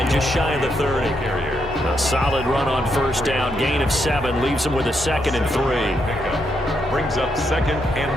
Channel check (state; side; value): normal; both; correlation 0.79